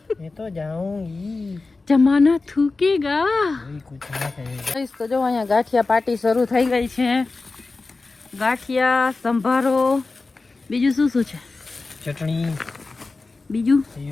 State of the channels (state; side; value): quieter; right; 3.7 dB